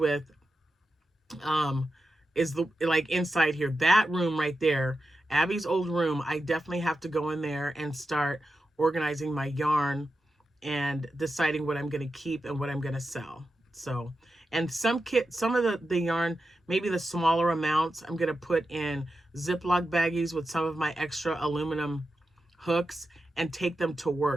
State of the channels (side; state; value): both; normal; correlation 0.90